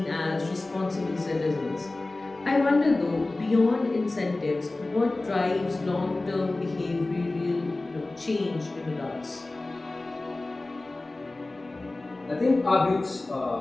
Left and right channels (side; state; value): right; quieter; 3.0 dB